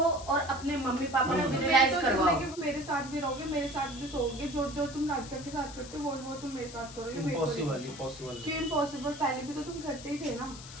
और अपने मम्मी पापा को भी मैं रियलाइज तो करवाओ। जिंदगी में मेरे साथ भी रहोगे, मेरे साथ भी सोओगे। जो जो तुम राधिका के साथ करते हो वो तुम मेरे साथ करोगे। मेरे को नहीं। Impossible impossible. क्यों इम्पॉसिबल? पहले भी तो तुम करते ही थे ना।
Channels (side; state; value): left; noise; hiss, 15 dB below the sound